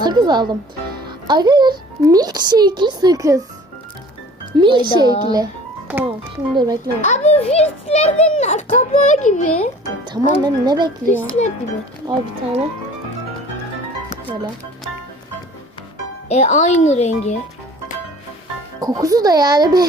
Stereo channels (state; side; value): normal; both; correlation 0.48